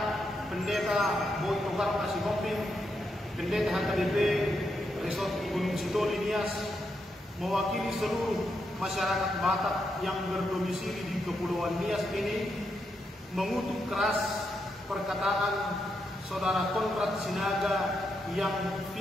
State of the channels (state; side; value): normal; both; correlation 0.82